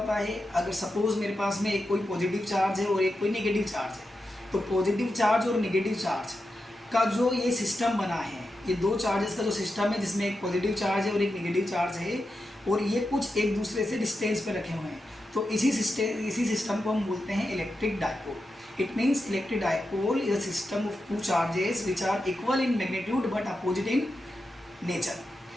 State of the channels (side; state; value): both; normal; correlation 0.89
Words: है, अगर सपोज मेरे पास में एक कोई पॉजिटिव चार्ज है और एक कोई नेगेटिव चार्ज है, तो पॉजिटिव चार्ज और नेगेटिव चार्ज का जो ये सिस्टम बना है, ये 2 चार्जेस का जो सिस्टम है जिसमें एक पॉजिटिव चार्ज है और एक नेगेटिव चार्ज है, और ये कुछ एक दूसरे से डिस्टेंस पे रखे हुए हैं, तो इसी सिस्टम को हम बोलते हैं electric dipole. It means electric dipole is a system of 2 charges which are equal in magnitude but opposite in nature।